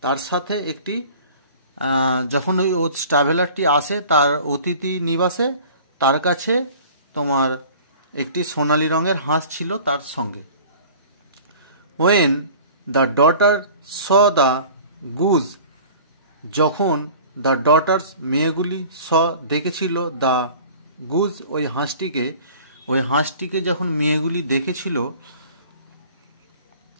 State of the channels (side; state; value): both; inverted; correlation -0.45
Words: তার সাথে একটি, যখন ওই ট্রাভেলারটি আসে তার অতিথি নিবাসে, তার কাছে তোমার একটি সোনালি রঙের হাঁস ছিল তার সঙ্গে। When the daughter saw the goose, যখন দ্য ডটার্স, মেয়েগুলি, স, দেখেছিল, দ্য গুজ, ওই হাঁসটিকে যখন মেয়েগুলি দেখেছিল,